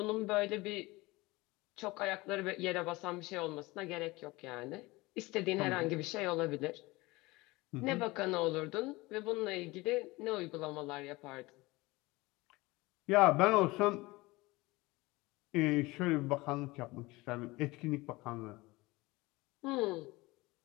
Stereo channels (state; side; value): quieter; right; 21.8 dB